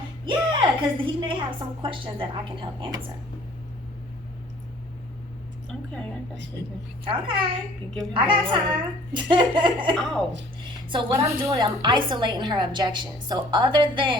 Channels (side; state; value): both; normal; correlation 0.54